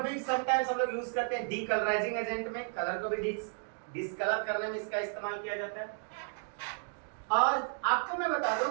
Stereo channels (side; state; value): left; silent; 56 dB below the other